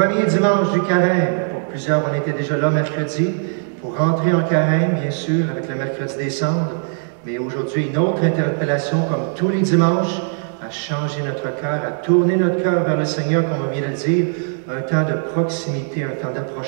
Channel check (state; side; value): silent; left; 58 dB below the other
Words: dimanche du carême. Pour plusieurs, on était déjà là mercredi pour rentrer en carême, bien sûr, avec le mercredi des cendres. Mais aujourd'hui, une autre interpellation, comme tous les dimanches, à changer notre cœur, à tourner notre cœur vers le Seigneur, comme on vient de le dire, un temps de proximité, un temps